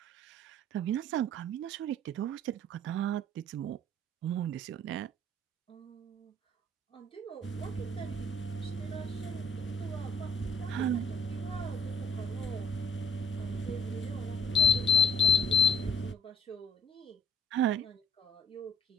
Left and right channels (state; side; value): normal; both; correlation 0.57